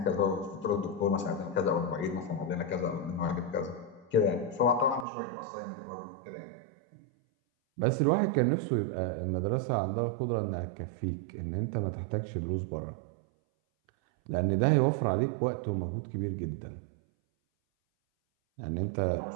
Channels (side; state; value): left; drops out; at 5.1 s